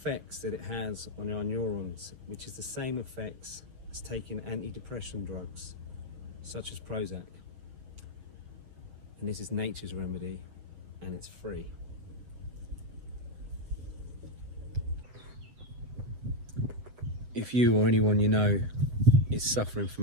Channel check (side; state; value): left; late; 7.9 ms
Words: that it has on our neurons, which is the same effects as taking antidepressant drugs, such as Prozac. And this is nature's remedy, and it's free. If you or anyone you know is suffering